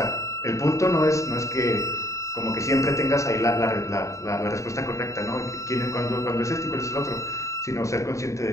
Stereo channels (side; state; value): right; late; 0.15 ms